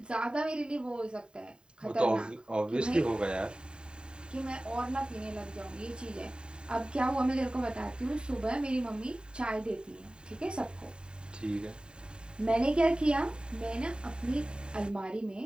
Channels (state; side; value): late; left; 0.049 ms